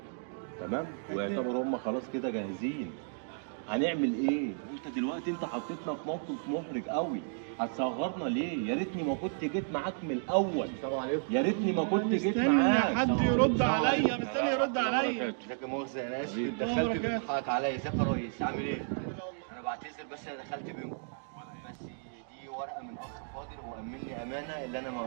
تمام؟ ويعتبروا هم خلاص كده جاهزين. هنعمل ايه؟ انت دلوقتي انت حطيتنا في موقف محرج قوي. هتصغرنا ليه؟ يا ريتني ما كنت جيت معاك من الاول. السلام عليكم. يا ريتني ما كنت جيت مستني معاك. حد يرد عليا، مستني يرد عليا. ازيك يا مؤاخذة انا اسف حبيبي. اتدخلت بركات. بتضحك عليا. ازيك يا ريس عامل ايه؟ انا بعتذر بس انا دخلت بينكم. بس دي ورقه من اخ فاضل هو امني امانه اللي انا ما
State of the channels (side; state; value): left; silent; digital silence